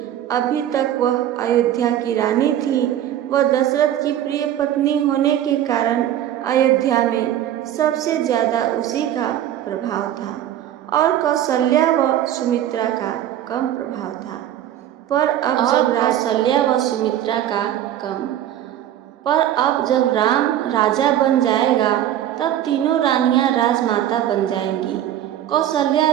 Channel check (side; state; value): left; quieter; 11.6 dB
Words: अभी तक वह अयोध्या की रानी थी। वह दशरथ की प्रिय पत्नी होने के कारण अयोध्या में सबसे ज़्यादा उसी का प्रभाव था और कौशल्या व सुमित्रा का कम प्रभाव था। पर अब जब राम राजा बन जाएगा, तब तीनों रानियां राजमाता बन जाएंगी। कौशल्या